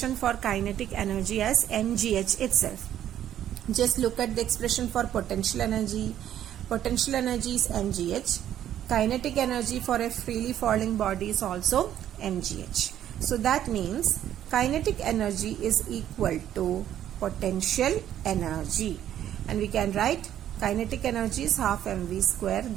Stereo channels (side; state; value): left; quieter; 11.1 dB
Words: for kinetic energy as mgh itself. Just look at the expression for potential energy. Potential energy is mgh. Kinetic energy for a freely falling body is also mgh. So that means kinetic energy is equal to potential energy, and we can write kinetic energy is half mv square,